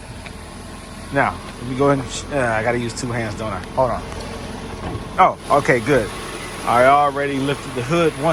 Now, let me go ahead and, I gotta use two hands, don't I? Hold on. Oh, okay, good. I already lifted the hood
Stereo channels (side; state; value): both; identical; correlation 1.00